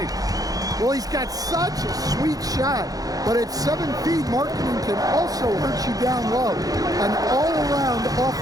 Well, he's got such a sweet shot, but at 7 feet, Markkanen can also hurt you down low. An all-around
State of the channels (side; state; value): left; late; 0.18 ms